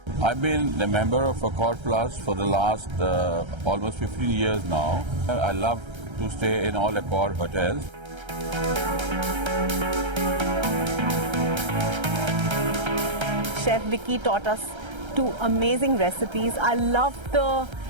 I've been a member of Accor Plus for the last almost 15 years now. I love to stay in all Accor hotels. Chef Vicky taught us 2 amazing recipes. I loved the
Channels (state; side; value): late; left; 1.3 ms